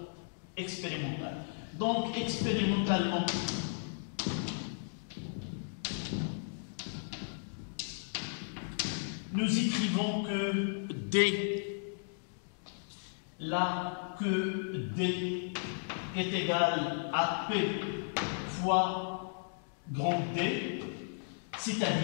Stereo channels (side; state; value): right; silent; digital silence